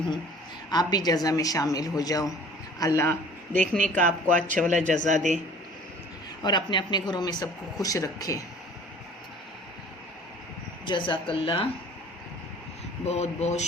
आप भी जज़ा में शामिल हो जाओ। अल्लाह देखने का आपको अच्छा वाला जज़ा दे और अपने अपने घरों में सबको खुश रखे। जज़ाकल्लाह, बहुत बहुत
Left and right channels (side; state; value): both; normal; correlation 0.49